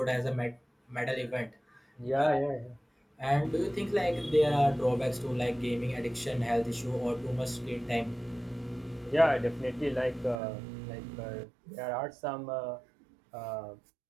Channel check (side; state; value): left; drops out; at 10.4 s